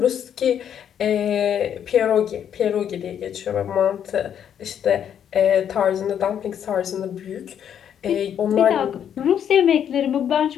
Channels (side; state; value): right; quieter; 9.1 dB